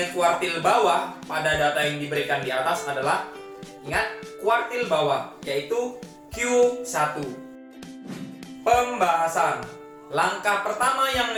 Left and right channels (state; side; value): identical; both; correlation 1.00